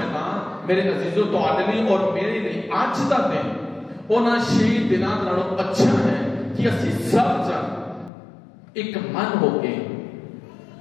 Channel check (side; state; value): right; drops out; at 8.1 s